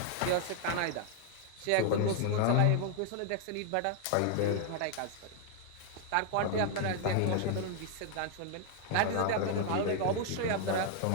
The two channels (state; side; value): different; both; correlation 0.00